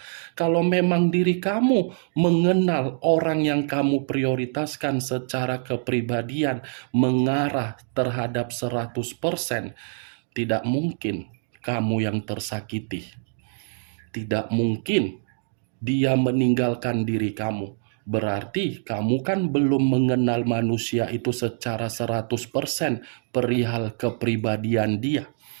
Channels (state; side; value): silent; left; digital silence